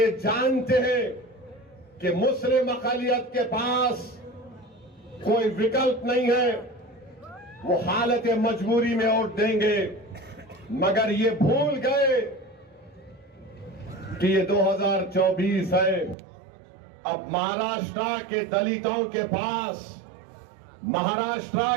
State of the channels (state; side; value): drops out; left; at 16.2 s